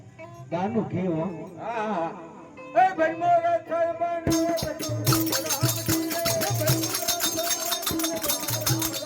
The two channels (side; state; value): both; identical; correlation 1.00